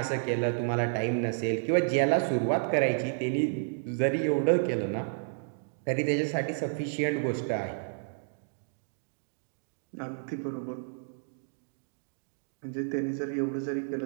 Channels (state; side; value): silent; left; digital silence